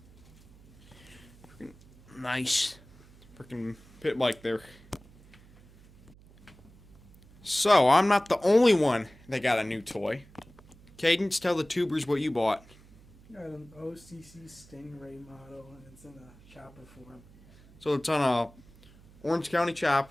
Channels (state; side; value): noise; right; hum, 25 dB below the sound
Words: Freaking nice. Freaking pit bike there. So, I'm not the only one that got a new toy. Cadence, tell the tubers what you bought. Got an OCC Stingray model, and it's in a chopper form. So it's on a Orange County